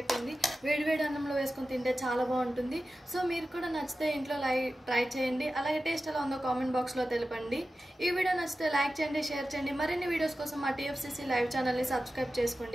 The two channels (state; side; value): normal; both; correlation 0.94